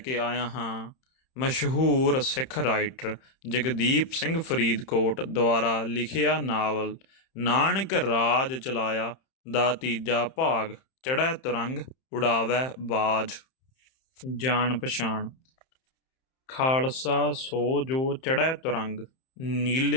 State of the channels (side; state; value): right; late; 31 ms